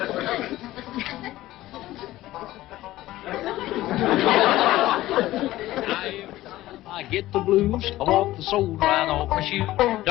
I get the blues, I walk the soul right off my shoe.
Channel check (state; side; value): quieter; right; 16.0 dB